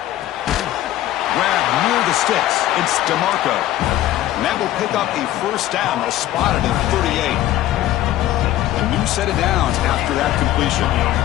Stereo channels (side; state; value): right; quieter; 13.9 dB